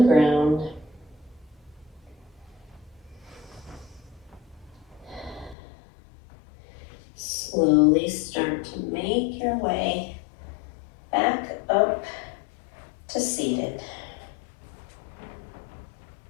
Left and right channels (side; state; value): right; drops out; at 5.6 s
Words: Slowly start to make your way back up to seated.